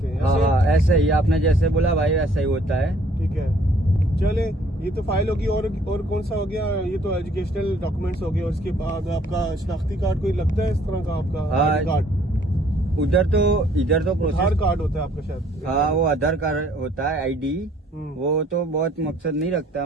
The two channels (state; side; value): normal; both; correlation 0.61